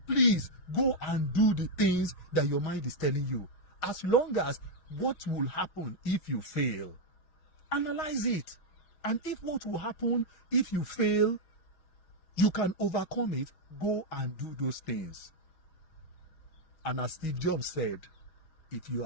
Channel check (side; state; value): right; late; 6.4 ms